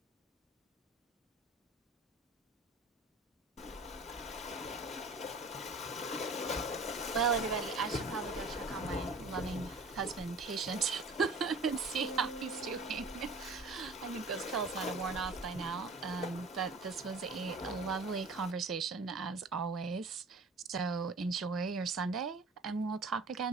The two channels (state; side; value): quieter; left; 3.1 dB